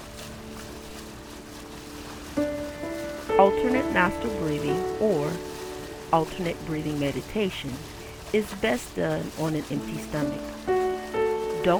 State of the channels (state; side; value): identical; both; correlation 1.00